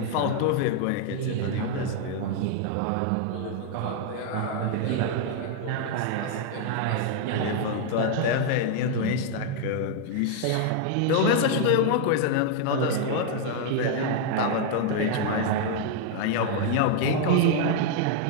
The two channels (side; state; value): both; different; correlation 0.00